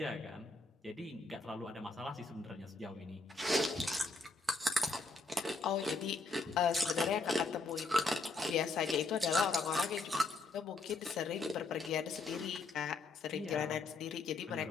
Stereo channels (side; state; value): right; quieter; 3.5 dB